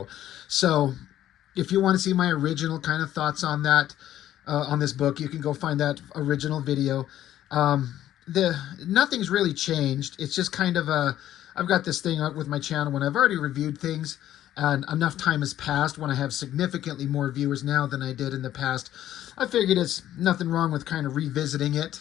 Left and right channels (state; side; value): quieter; right; 12.4 dB